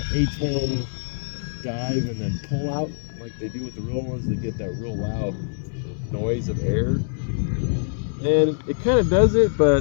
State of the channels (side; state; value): right; silent; digital silence